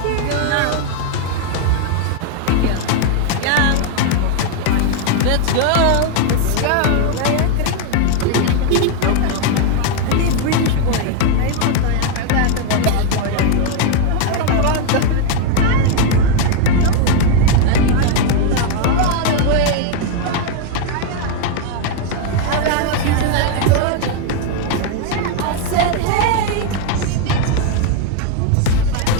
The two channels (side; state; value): both; different; correlation 0.00